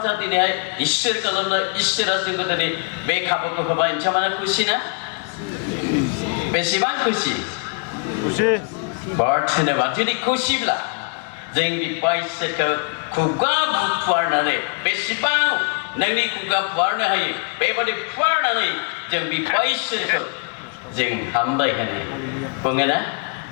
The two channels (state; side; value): quieter; right; 39.2 dB